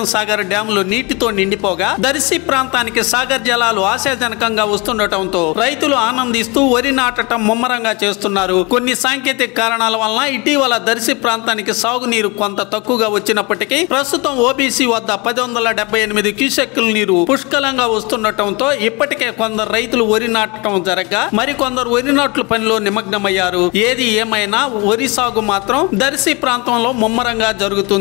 సాగర్ డ్యాంలు నీటితో నిండిపోగా దర్శి ప్రాంతానికి సాగర్ జలాలు ఆశాజనకంగా వస్తుండటంతో రైతులు ఆనందిస్తూ వరి నాటడం ముమ్మరంగా చేస్తున్నారు. కొన్ని సాంకేతిక కారణాల వలన ఇటీవల దర్శి ప్రాంతానికి సాగునీరు కొంత తక్కువగా వచ్చినప్పటికీ ప్రస్తుతం ఓబీసీ వద్ద 1078 క్యూసెక్కుల నీరు పుష్కలంగా వస్తుండటంతో ఇప్పటికే కొందరు రైతులు వరి నాటడం జరగగా మరికొందరు వరి నాట్ల పనిలో నిమగ్నమయ్యారు. ఏది ఏమైనా వరి సాగు మాత్రం దర్శి ప్రాంతంలో ముమ్మరంగా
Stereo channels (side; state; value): right; quieter; 27.2 dB